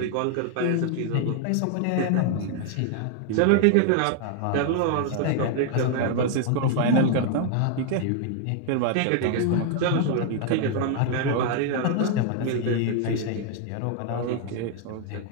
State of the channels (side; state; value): both; different; correlation 0.00